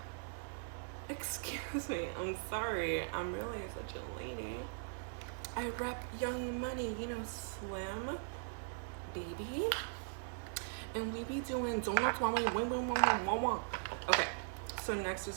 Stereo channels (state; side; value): silent; left; 51 dB below the other